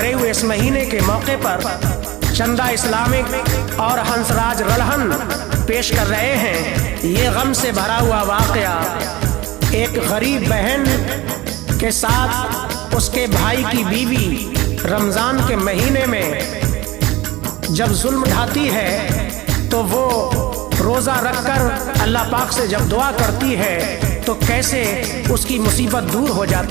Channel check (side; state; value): left; quieter; 19.0 dB